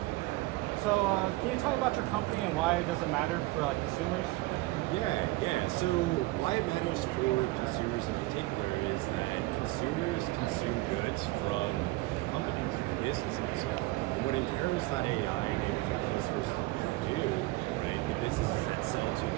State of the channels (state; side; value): quieter; left; 20.3 dB